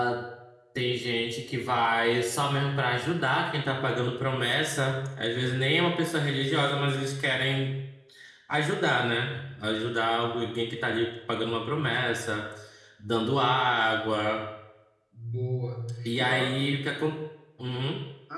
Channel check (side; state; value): both; identical; correlation 1.00